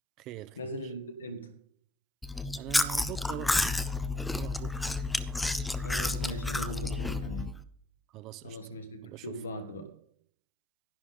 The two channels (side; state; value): both; normal; correlation 0.72